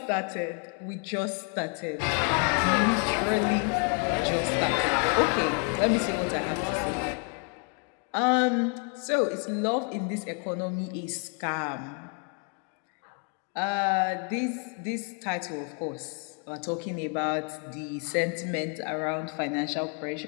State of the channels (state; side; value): quieter; right; 37.3 dB